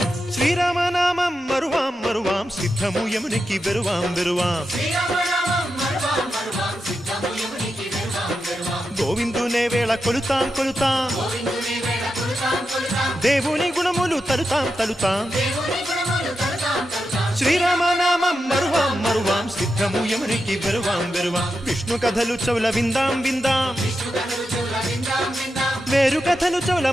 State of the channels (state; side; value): normal; both; correlation 0.88